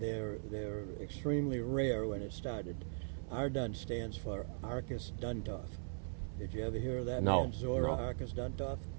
extremely rare when it started. Ardun stands for Arcus Duntov. Did you ever hear of that man, Zora Arcus Duntov?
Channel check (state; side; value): silent; left; 51 dB below the other